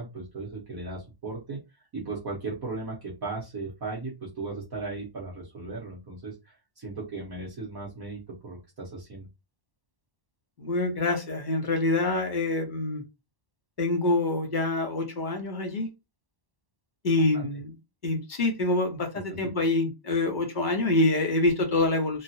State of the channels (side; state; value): left; late; 1.1 ms